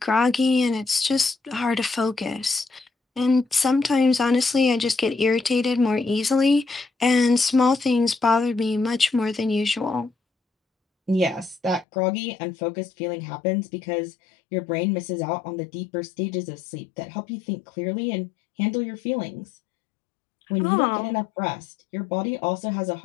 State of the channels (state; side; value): drops out; right; at 11.9 s